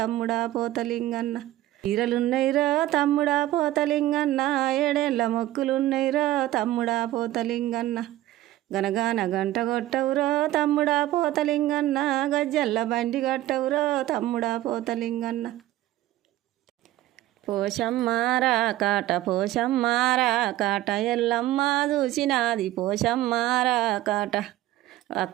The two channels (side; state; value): left; quieter; 15.3 dB